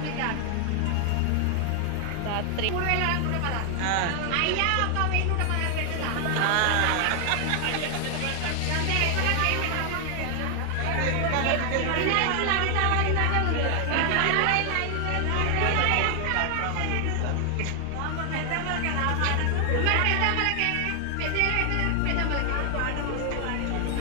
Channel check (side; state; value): both; different; correlation 0.00